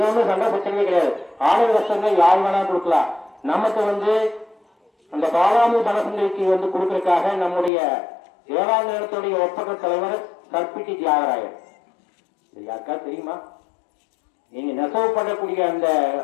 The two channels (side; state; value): right; drops out; at 7.7 s